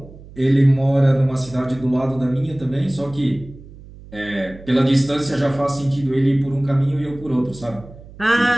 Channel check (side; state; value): right; noise; hum, 19 dB below the sound